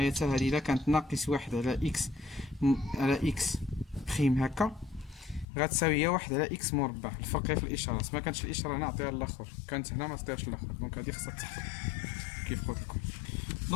حتى هادي الا كانت ناقص واحد على اكس على اكس بريم هكا غتساوي هي واحد على اكس مربع. الفرق في الاشارات، ما كانتش الاشاره هنا عطيها للاخر، كانت هنا ما عطيهاش للاخر. دونك هادي خصها تحفظ كيف قلت لكم.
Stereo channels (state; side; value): drops out; right; at 5.5 s